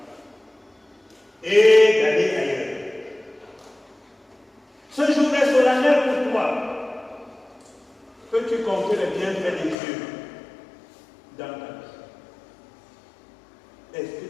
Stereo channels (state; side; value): drops out; right; at 9.8 s